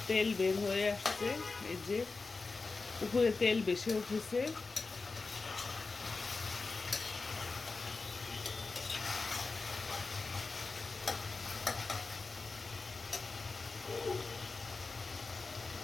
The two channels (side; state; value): right; quieter; 4.0 dB